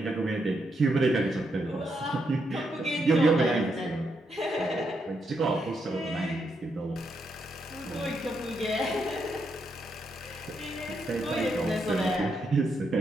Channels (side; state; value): both; normal; correlation 0.80